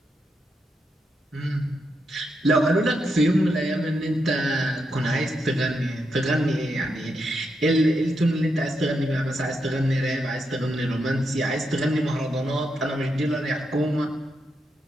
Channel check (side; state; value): both; normal; correlation 0.83